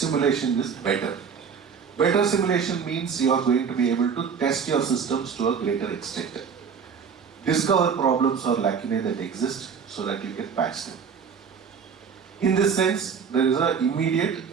is better. Better simulation means you are going to be able to test your systems to a greater extent. Discover problems or lacunae that exist so that you can patch them. In this sense, there is an immediate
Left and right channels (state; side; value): quieter; left; 6.4 dB